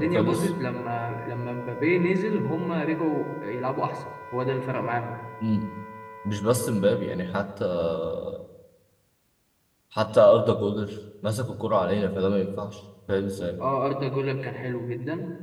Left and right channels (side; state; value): both; identical; correlation 1.00